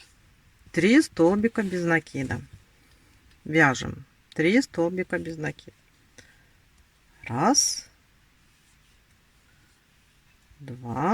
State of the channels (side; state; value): both; identical; correlation 1.00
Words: 3 столбика без накида. Вяжем 3 столбика без накида. Раз,